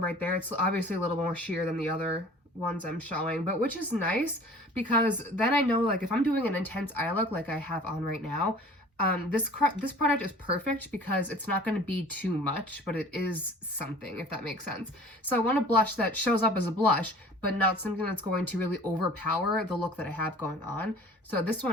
there. It's obviously a little more sheer than the other ones I'm showing, but which is nice because then I know, like, if I'm doing an intense eye look like I have on right now, this product is perfect because it's not going to be too much, but it is something, if that makes sense. So I want a blush that shows up as a blush, but not something that's going to really overpower the look that I have going on. So this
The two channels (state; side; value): normal; both; correlation 0.46